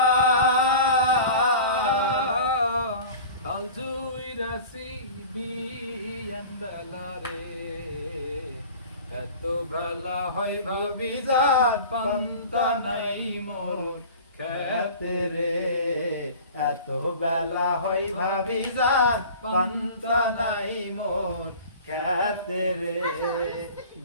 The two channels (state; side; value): inverted; both; correlation -0.40